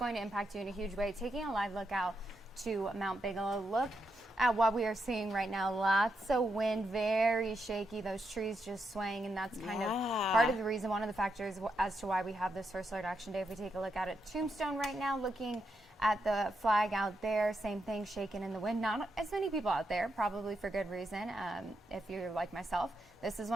to impact you in a huge way. Taking a live look out to Mount Bigelow. Look at what we are seeing right now. Lots of wind, very shaky, those trees just swaying, and that's kind of part of the reason, one of the factors as to why we have this first alert action day. If we take a look at it, Tombstone right now, looking at the flag out there, same thing, shaking in the wind. Not as many people out there, probably for good reason. If you're like myself, this is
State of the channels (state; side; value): normal; both; correlation 0.83